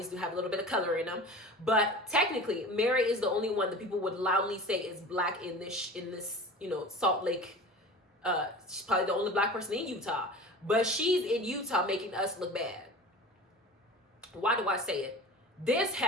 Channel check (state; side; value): normal; both; correlation 0.37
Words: do have a little bit of color in them. But technically, Mary is the only one that people would loudly say is black in this Salt Lake. She's probably the only black person in Utah. But she's in Utah making us look bad. Why do I say it? This